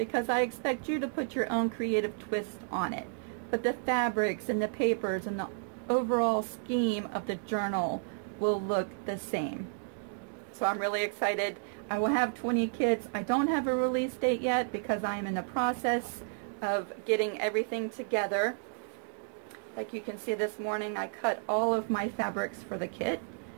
I expect you to put your own creative twist on it. But the fabrics and the papers and the overall scheme of the journal will look the same. So I'm really excited. I will have 20 kits. I don't have a release date yet because I am in the process of getting everything together. Like you can see this morning, I cut all of my fabrics for the kit,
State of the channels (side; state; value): left; silent; digital silence